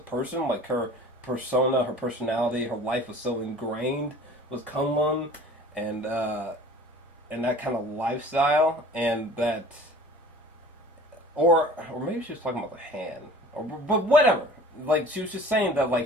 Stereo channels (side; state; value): both; normal; correlation 0.44